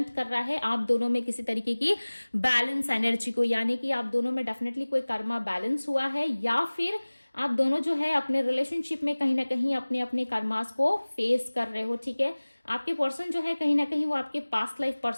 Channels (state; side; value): inverted; both; correlation -1.00